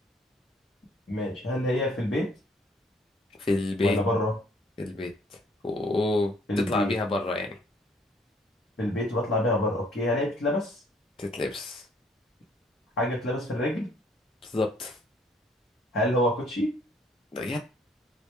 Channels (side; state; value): both; normal; correlation 0.62